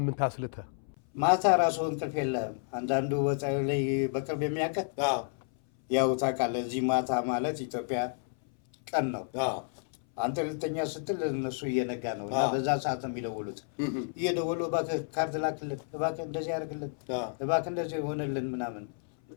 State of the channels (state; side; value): silent; right; 57 dB below the other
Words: አስልተ ማታ ራሱ እንቅልፍ የለም። አንዳንዱ ላይ በቅርብ የሚያውቀው ያው ታውቃለህ፣ እዚህ ማታ ማለት ኢትዮጵያ ቀን ነው። አንተ ልተኛ ስትል እነሱ እየነጋ ነው እና በዛ ሰዓት ነው የሚደውሉት። እየደወሉ እባክህ ካርድ ላክልን፣ እባክህ እንደዚህ ያደርግልን፣ እባክህ እንደዚህ ይሆንልን ምናምን